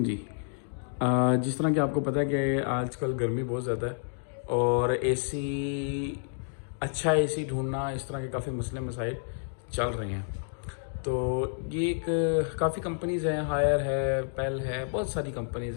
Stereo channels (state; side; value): silent; right; digital silence